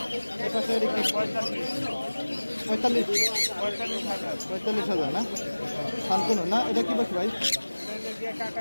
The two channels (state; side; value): inverted; both; correlation -1.00